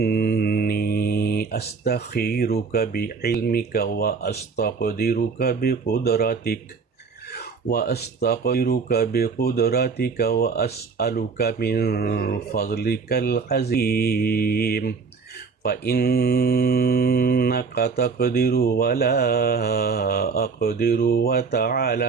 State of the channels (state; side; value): quieter; left; 5.1 dB